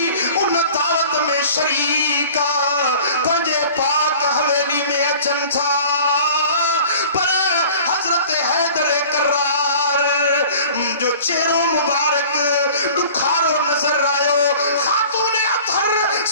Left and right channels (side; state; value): both; inverted; correlation -0.45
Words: उन दावत में शरीका पंजे पाक हवेली में अचन था पर हजरत हैदर करार जो चेहरो मुबारक दुखारो नजर आयो खातून अतहर